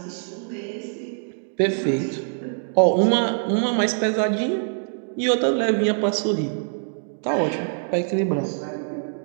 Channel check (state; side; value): silent; left; digital silence